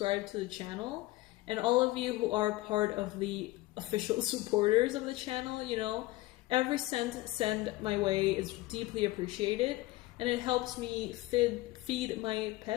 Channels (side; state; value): right; quieter; 18.8 dB